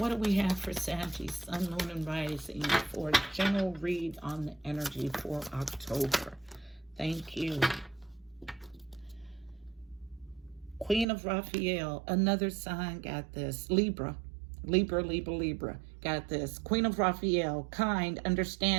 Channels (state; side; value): drops out; left; at 11.1 s